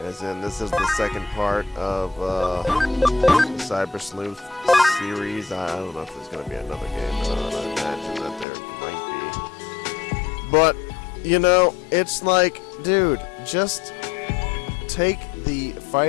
in this is the second part of the Cyber Sleuth series. I don't know if there's gonna be another game or not. I imagine that there might be. But, you know, it's like, dude, just take the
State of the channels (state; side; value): drops out; right; at 8.5 s